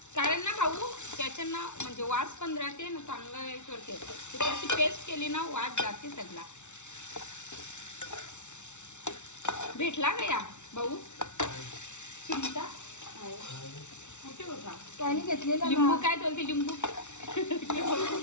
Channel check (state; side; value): late; right; 0.83 ms